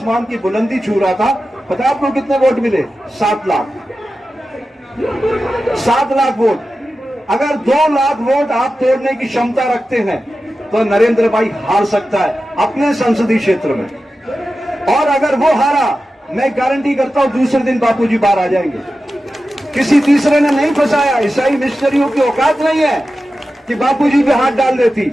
की बुलंदी छू रहा था, पता है आपको कितने वोट मिले? 7 लाख। 7 लाख वोट। अगर 2 लाख वोट आप तोड़ने की क्षमता रखते हैं तो नरेंद्र भाई हार सकता है अपने संसदीय क्षेत्र में। और अगर वो हारा, मैं गारंटी करता हूं दूसरे दिन बापूजी बाहर आ जाएंगे। किसी तीसरे ने नहीं फंसाया। ईसाई मिशनरियों की औकात नहीं है कि बापूजी पे हाथ डाल देती।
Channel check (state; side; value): normal; both; correlation 0.93